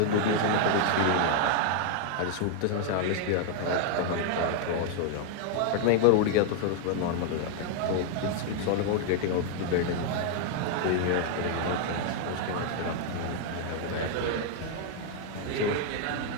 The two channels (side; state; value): both; different; correlation 0.00